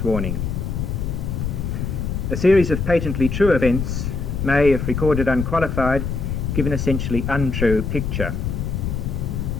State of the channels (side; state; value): left; noise; rumble, 2 dB below the sound